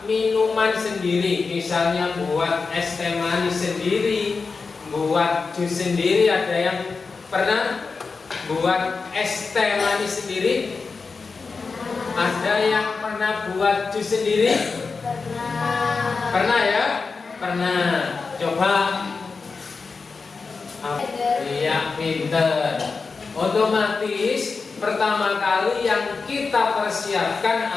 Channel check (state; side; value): quieter; right; 4.6 dB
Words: minuman sendiri, misalnya buat es teh manis sendiri, buat jus sendiri. Ada yang pernah buat es teh manis sendiri? Ada yang pernah buat jus sendiri? Pernah ya? Pernah. Coba. Iya, pinter. Otomatis pertama kali yang kita persiapkan